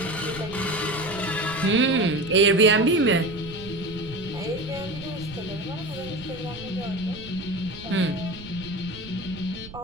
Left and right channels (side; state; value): right; noise; rumble, 16 dB below the sound